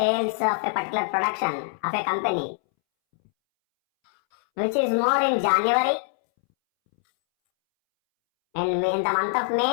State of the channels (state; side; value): silent; right; 63 dB below the other